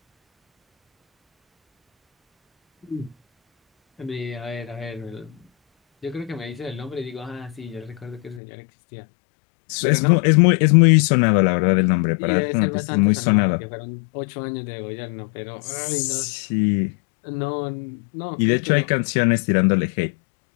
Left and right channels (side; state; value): right; drops out; at 8.4 s